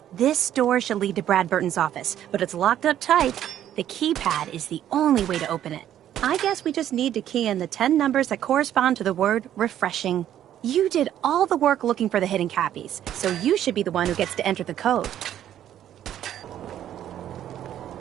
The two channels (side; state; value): left; quieter; 11.1 dB